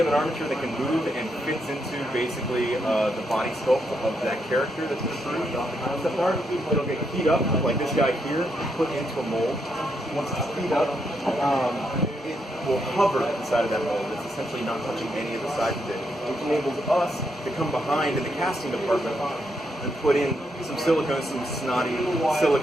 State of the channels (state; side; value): normal; both; correlation 0.79